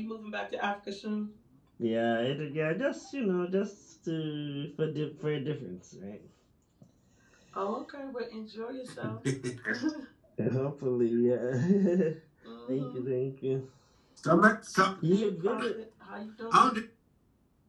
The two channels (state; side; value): identical; both; correlation 1.00